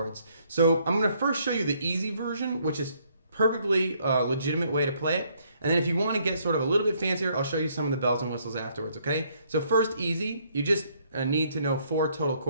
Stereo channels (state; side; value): inverted; both; correlation -0.68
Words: So I'm going to first show you the easy version, which is perfectly legitimate way to play it. And then if you want to get sort of a little bit fancier, I'll show you some of the bells and whistles afterwards, okay? So first, easy. You just need to know 4 total